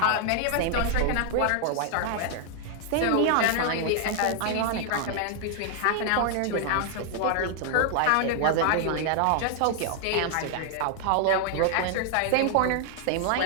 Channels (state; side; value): different; both; correlation 0.00